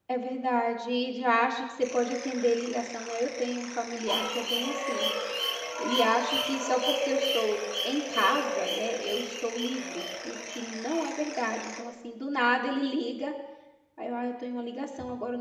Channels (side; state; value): both; identical; correlation 1.00